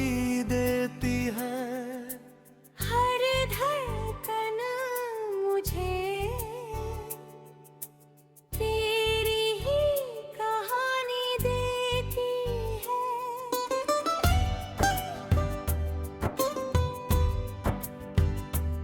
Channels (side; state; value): both; identical; correlation 1.00